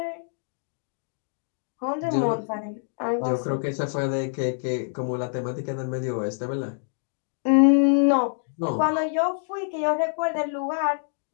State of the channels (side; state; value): right; silent; digital silence